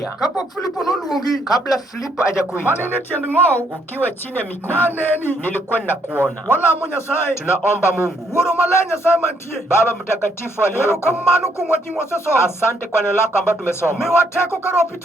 kapok Filipo noluongi, kabla Filipo mane hajakuita, ine tiend ng'owu, ukiwa chini ya miguu naneni. nilikuwa ninakuona. Walamo Nyasaye, Tunaomba Mungu Wuoro Maler Nyasaye mantie, Baba mtakatifu aliyeko, erokamano kuom wach mwasesomo, asante kwa neno lako ambalo tumesoma. miwa teko ka Roho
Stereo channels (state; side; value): normal; both; correlation 0.71